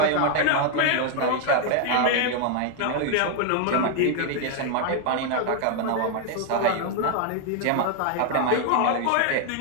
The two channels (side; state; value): both; different; correlation 0.00